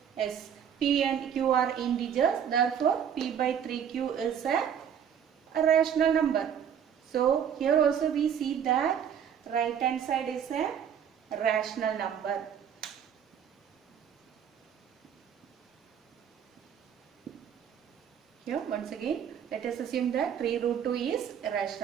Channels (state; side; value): quieter; left; 8.5 dB